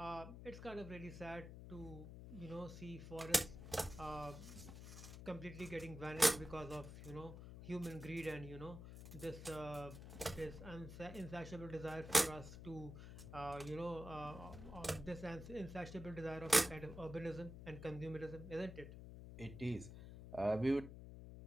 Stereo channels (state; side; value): noise; left; hum, 11 dB below the sound